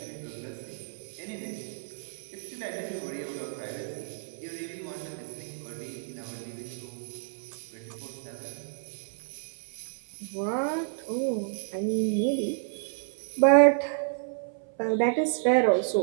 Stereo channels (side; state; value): left; silent; 58 dB below the other